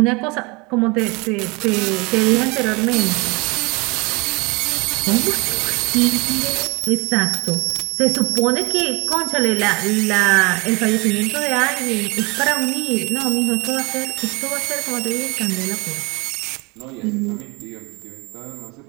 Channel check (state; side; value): quieter; left; 27.3 dB